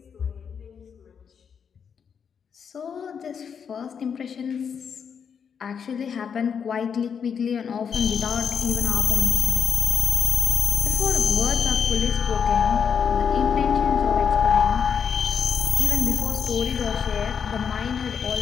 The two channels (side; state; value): right; quieter; 7.0 dB